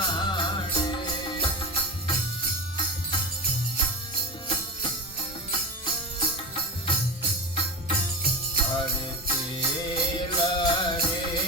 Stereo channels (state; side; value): normal; both; correlation 0.25